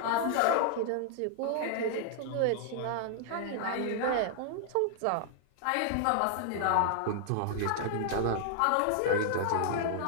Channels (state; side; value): different; both; correlation -0.01